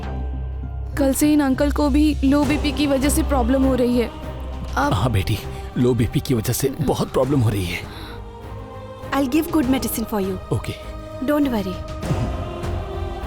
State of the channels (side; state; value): both; identical; correlation 1.00